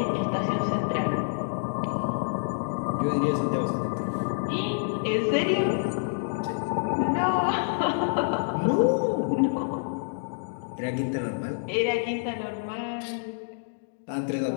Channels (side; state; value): right; silent; digital silence